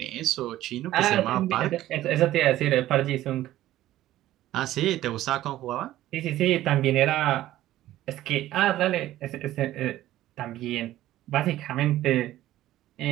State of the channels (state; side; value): quieter; left; 14.4 dB